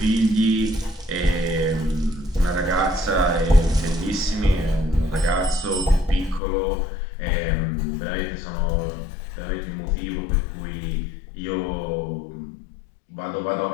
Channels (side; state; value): right; drops out; at 6.4 s